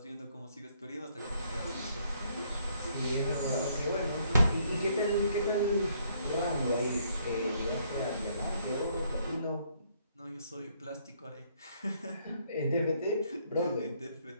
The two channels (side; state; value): both; inverted; correlation -0.68